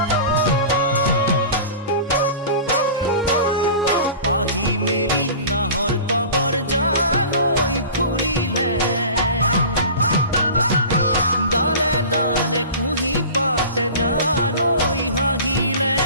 পাহি মেলি নাহৰ তগৰ জানৈ ফুলিলে ডালে ডালে কুহি পাতে জানৈ হাঁহিলে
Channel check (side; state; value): both; inverted; correlation -0.37